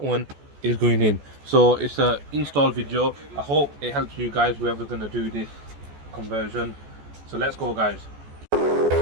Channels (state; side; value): late; left; 14 ms